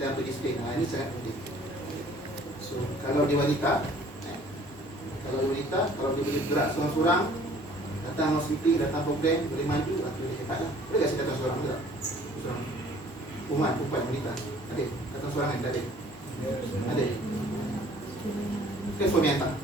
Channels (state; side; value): normal; both; correlation 0.54